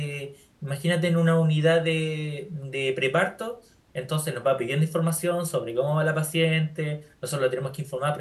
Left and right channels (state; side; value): identical; both; correlation 1.00